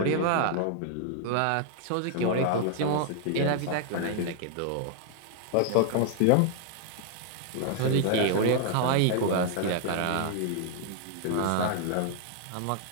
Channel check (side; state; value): both; different; correlation 0.00